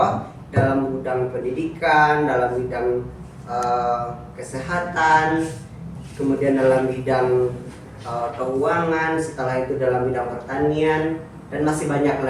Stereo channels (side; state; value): both; identical; correlation 1.00